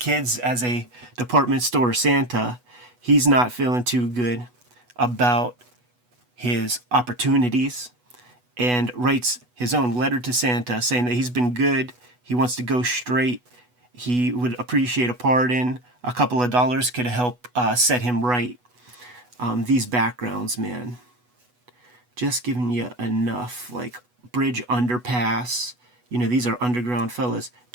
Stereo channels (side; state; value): left; late; 8.1 ms